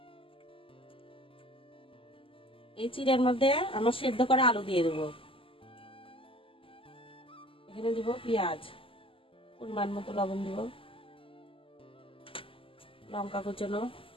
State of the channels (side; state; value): right; late; 0.26 ms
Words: এই চিড়ের মধ্যে আমার সেদ্ধ করা আলু দিয়ে দেবো। এখানে দিব পেঁয়াজ, পরিমাণ মতো লবণ দিব, লঙ্কা কুচনো,